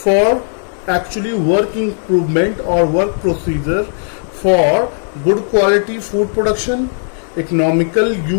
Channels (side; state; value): right; silent; 69 dB below the other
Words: actually work improvement or work procedure for good quality food production, economical